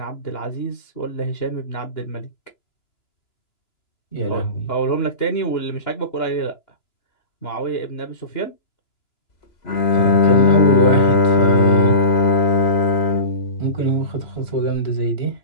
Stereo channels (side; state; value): right; late; 2.9 ms